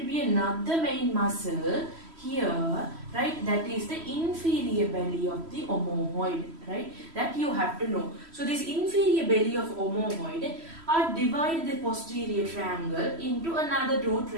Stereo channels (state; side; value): late; left; 3.1 ms